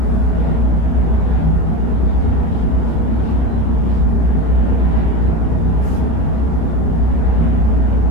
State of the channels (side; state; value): right; late; 31 ms